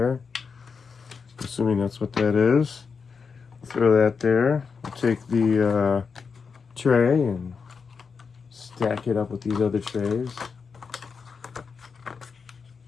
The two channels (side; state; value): right; quieter; 5.5 dB